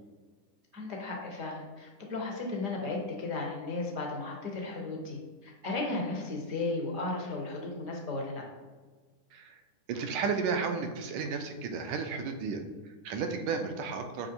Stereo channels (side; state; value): left; late; 10 ms